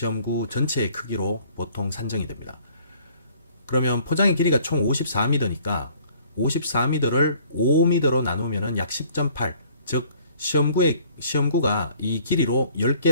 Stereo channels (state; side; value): inverted; both; correlation -0.56